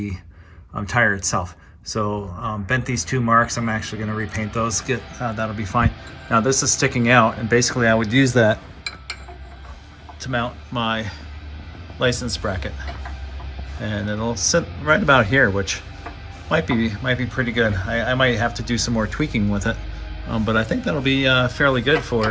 tire itself. So bent these 2 marks. I'm actually going to repaint those. That'll be fine. Now this is sticking out, and basically I would use that to mount my license bracket, and it'll sit right about here, which might be pretty good. I might have to do some more tweaking with it, but I think that'll be fairly good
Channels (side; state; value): both; identical; correlation 1.00